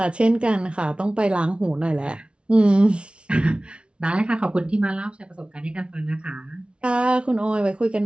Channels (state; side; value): late; left; 0.058 ms